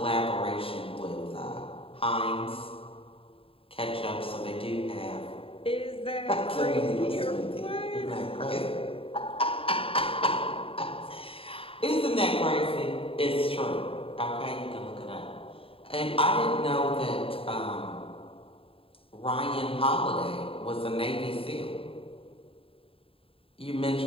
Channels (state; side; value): late; right; 0.27 ms